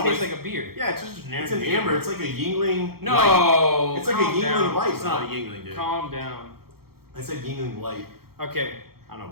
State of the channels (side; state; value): left; late; 0.94 ms